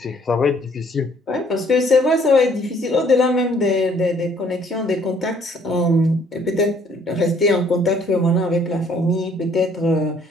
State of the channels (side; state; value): both; normal; correlation 0.62